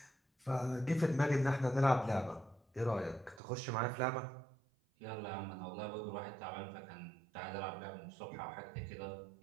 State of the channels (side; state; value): left; drops out; at 3.4 s